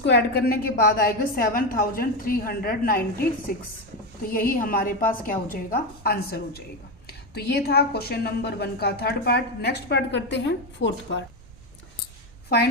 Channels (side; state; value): both; normal; correlation 0.12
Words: ऐड करने के बाद आएगा 7396। तो यही हमारे पास क्या हो जाएगा, आंसर हो जाएगा। तो ये था क्वेश्चन नंबर 1 का थर्ड पार्ट। नेक्स्ट पार्ट करते हैं fourth part.